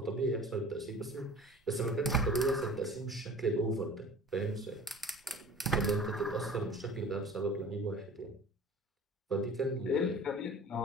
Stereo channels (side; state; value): both; normal; correlation 0.42